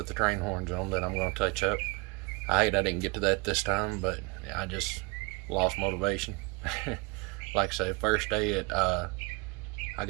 the train horns on that I'm going to touch up. I hate I didn't get to that this time, but I just lost motivation. Like I say, first day I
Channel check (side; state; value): left; quieter; 27.6 dB